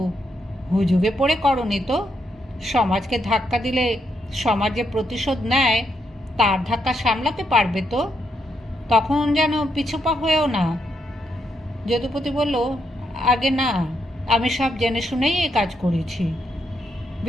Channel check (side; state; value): both; normal; correlation 0.79